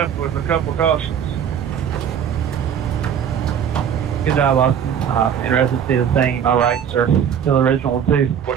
with a couple cautions. Good job, Austin. Interested to see the same. All right, sir. Still original, too.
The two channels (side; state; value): left; quieter; 8.4 dB